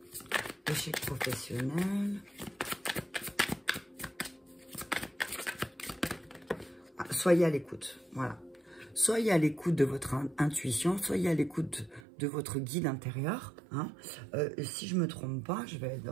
Échec professionnel. Ah, soyez à l'écoute, voilà. Soyez à l'écoute de votre intuition, soyez à l'écoute de votre guide intérieur. Hein. Si je ne me trompe pas, je vais le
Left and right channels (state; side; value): drops out; left; at 12.0 s